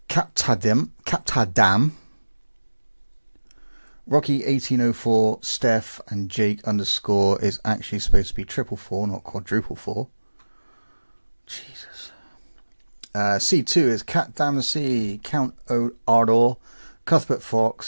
Captadam, Rocky 1804, Steph, and Jake underscore is actually supposed to be 444, not quadruple four. Jesus. C2 is Cat Damacy, Count Ardor, Cuthbert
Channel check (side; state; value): both; inverted; correlation -1.00